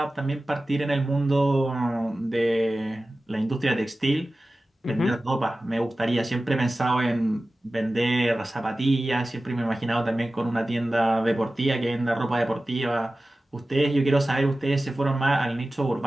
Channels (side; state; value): both; normal; correlation 0.96